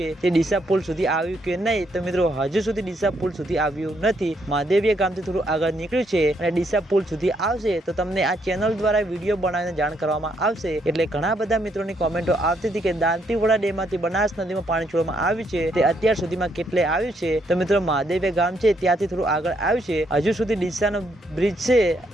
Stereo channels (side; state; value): both; normal; correlation 0.74